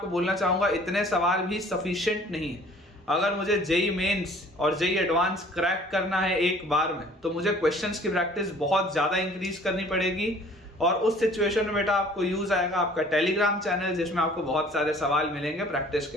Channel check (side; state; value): both; normal; correlation 0.52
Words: बोलना चाहूंगा इतने सवाल भी सफिशिएंट नहीं है। अगर मुझे जेई मेंस और जेई एडवांस क्रैक करना है एक बार में तो मुझे क्वेश्चंस की प्रैक्टिस बहुत ज्यादा इंक्रीज करनी पड़ेगी। और उस सिचुएशन में बेटा आपको यूज आएगा आपका टेलीग्राम चैनल, जिसमें आपको बहुत सारे सवाल मिलेंगे प्रैक्टिस